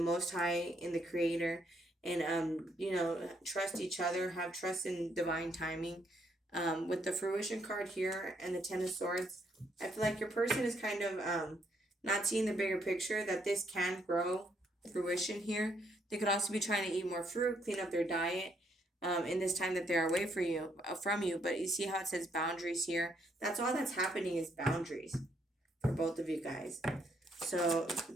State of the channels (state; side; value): normal; both; correlation 0.72